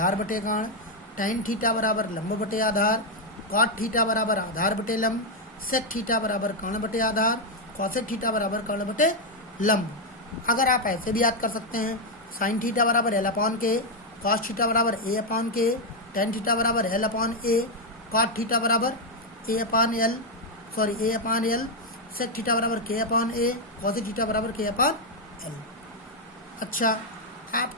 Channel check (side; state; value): both; normal; correlation 0.02